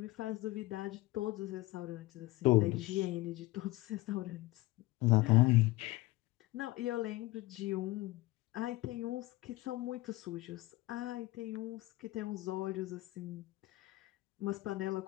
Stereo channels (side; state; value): right; quieter; 19.4 dB